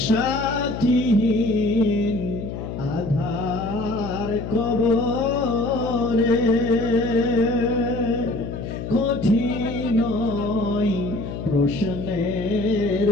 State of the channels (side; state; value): left; noise; hum, 7 dB below the sound